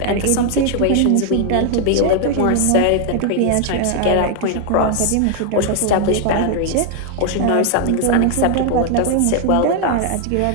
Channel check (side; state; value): both; different; correlation 0.00